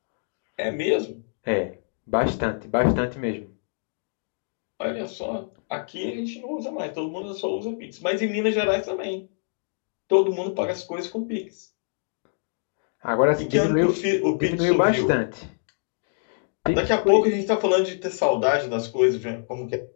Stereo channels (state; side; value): silent; right; digital silence